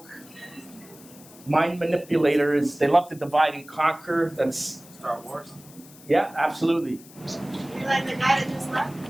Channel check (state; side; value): noise; left; hiss, 22 dB below the sound